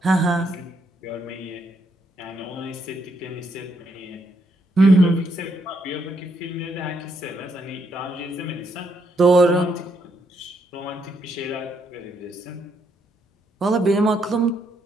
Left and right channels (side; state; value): both; normal; correlation 0.76